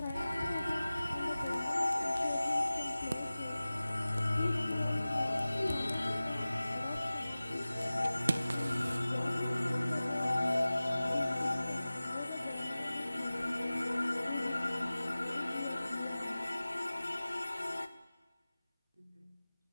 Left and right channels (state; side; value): inverted; both; correlation -0.97